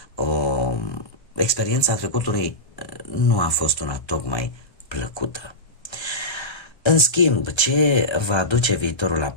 experiența trecutului, nu a fost una tocmai plăcută. În schimb, ce va aduce viitorul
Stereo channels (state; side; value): late; right; 1.3 ms